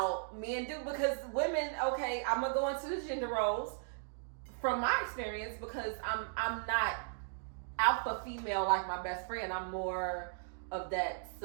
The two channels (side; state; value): left; silent; digital silence